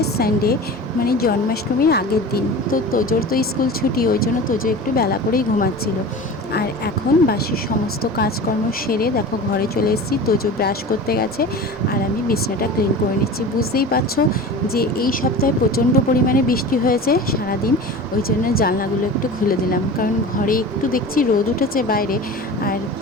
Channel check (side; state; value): both; normal; correlation 0.35